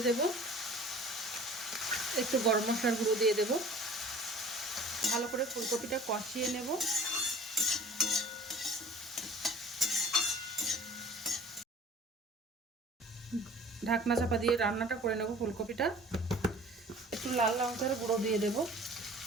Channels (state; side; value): normal; both; correlation 0.47